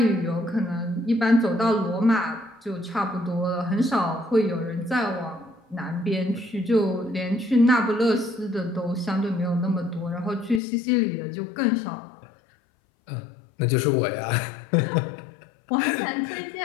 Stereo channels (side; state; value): right; drops out; at 10.6 s